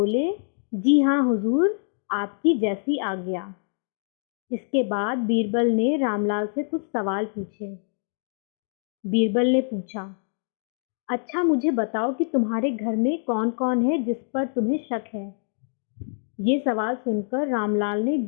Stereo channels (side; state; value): right; silent; digital silence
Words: जी हाँ हुजूर, आपकी जैसी आज्ञा। इसके बाद बीरबल ने रामलाल से कुछ सवाल पूछे। बीरबल ने पूछा, अच्छा मुझे बताओ कि तुम्हारे घर में कौन कौन है जिस पर तुम्हें शक है? ये सवाल सुनकर रामलाल ने